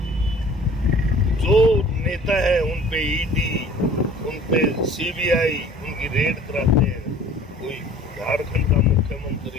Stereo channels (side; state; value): both; normal; correlation 0.49